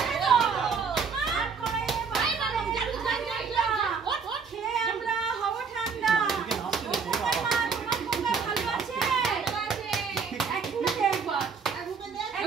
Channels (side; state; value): left; quieter; 5.7 dB